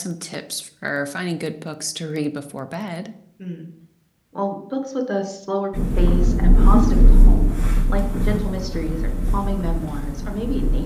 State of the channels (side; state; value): both; identical; correlation 1.00